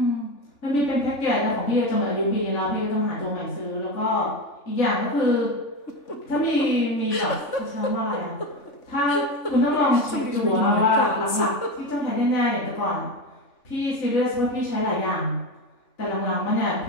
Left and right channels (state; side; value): late; right; 3.6 ms